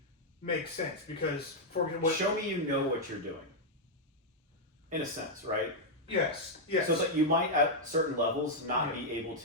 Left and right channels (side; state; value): both; normal; correlation -0.03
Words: makes sense, because show me you know what you're doing. In a sense, right? Yes. So that you might at certain levels not be able